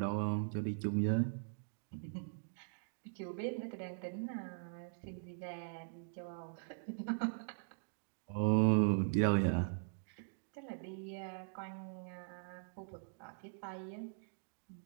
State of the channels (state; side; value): silent; left; digital silence